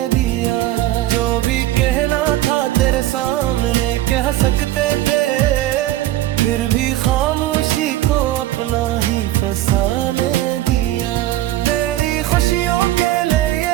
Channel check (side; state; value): left; quieter; 14.6 dB